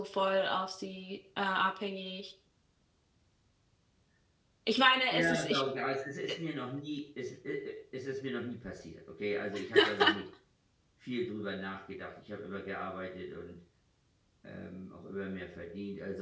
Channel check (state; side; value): identical; both; correlation 1.00